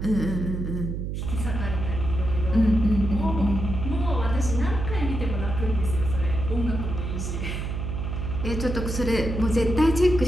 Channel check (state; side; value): noise; right; hum, 4 dB below the sound